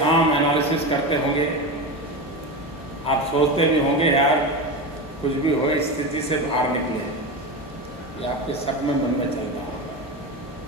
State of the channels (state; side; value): normal; both; correlation 0.21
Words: एनालिसिस करते होंगे, आप सोचते भी होंगे यार कुछ भी हो इस स्थिति से बाहर निकले, ये आपके सब में मन में चलता होगा।